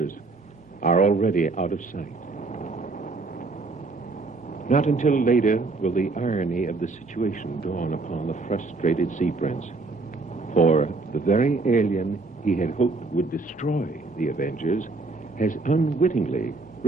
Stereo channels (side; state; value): left; quieter; 3.7 dB